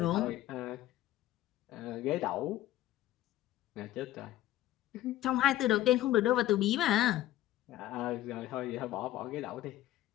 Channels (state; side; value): quieter; right; 14.4 dB